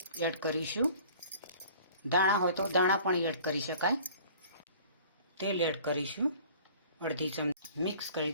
એડ કરીશું, દાણા હોય તો દાણા પણ એડ કરી શકાય. તેલ એડ કરીશું, અડધી ચમચી મિક્સ કરી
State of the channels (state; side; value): inverted; both; correlation -0.49